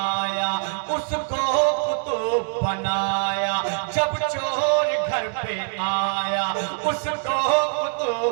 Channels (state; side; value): silent; left; 63 dB below the other